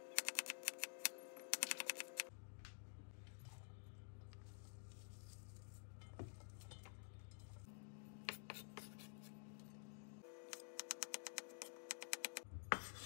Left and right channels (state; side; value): silent; right; digital silence